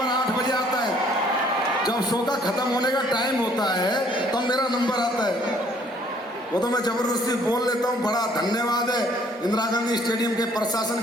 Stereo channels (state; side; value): normal; both; correlation 0.61